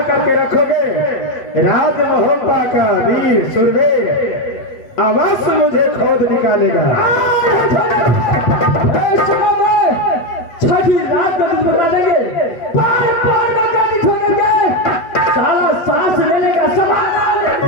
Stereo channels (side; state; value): right; late; 8.0 ms